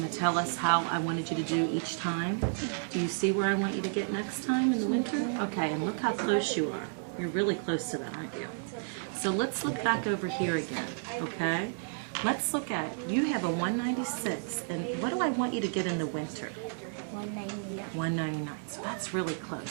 to tell us how I wanted you to do each time? Do you see where I want you to get next time in the winter? Okay, and look how close you are. You're really close to that, aren't you? So let's look back over here again, okay? Let's look at, you have a 196, and what do I want you to get in the winter? 199. 199, so that's really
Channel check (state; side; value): silent; left; 57 dB below the other